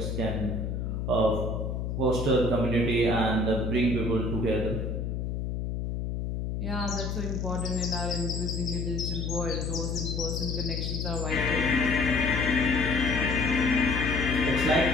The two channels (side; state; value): left; noise; hum, 2 dB below the sound